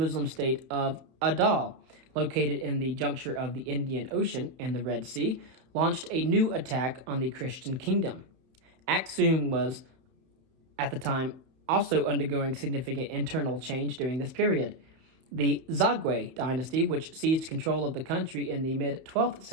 state of Adal, located in the juncture of the Indian Ocean and the Red Sea, launched a new attack on the Christian kingdom. Aksum was, at the time, also undergoing significant internal change during this period. The Zagwe dynasty, which seized control of the country in the mid-12th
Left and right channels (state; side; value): late; left; 31 ms